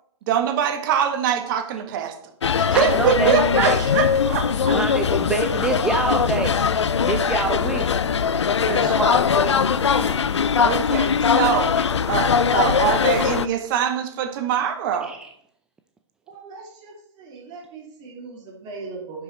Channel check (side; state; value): both; normal; correlation -0.02